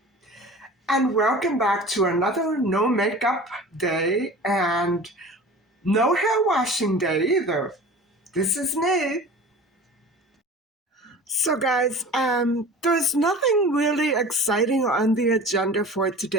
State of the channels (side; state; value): both; normal; correlation 0.38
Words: and welcome back to another no makeup day and no hair washing day either. This is me. So guys, there's nothing really exciting on the agenda for